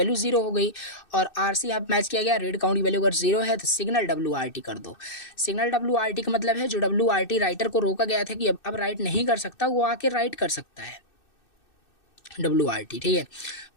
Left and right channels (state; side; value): late; right; 2.6 ms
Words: ज़ीरो हो गई और आरसी यहाँ मैच किया गया, रीड काउंट की वैल्यू अगर ज़ीरो है तो सिग्नल WRT कर दो। सिग्नल WRT का मतलब है जो WRT राइटर को रोका गया था कि अब राइट नहीं कर सकता, वो आके राइट कर सकता है WRT, ठीक है।